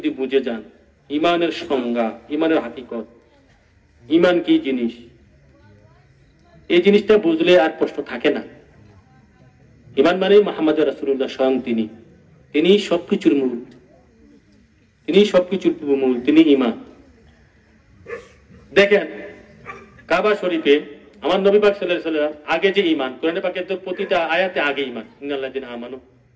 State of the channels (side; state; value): both; identical; correlation 1.00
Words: বুঝে যান ঈমানের সংজ্ঞা ঈমানের হাকিকত ঈমান কি জিনিস এই জিনিসটা বুঝলে আর প্রশ্ন থাকে না ঈমান মানে মুহাম্মদ রাসূলুল্লাহ স্বয়ং তিনি সবকিছুর মূল তিনি সবকিছুর মূল তিনি ঈমান দেখেন কাবা শরীফে আমার নবী পাক সাল্লাল্লাহু আলাইহি ওয়াসাল্লাম আগে যে ঈমান কোরআনে পাকের তো প্রতিটা আয়াতে আগে ঈমান ইন্নাল্লাযিনা আমানু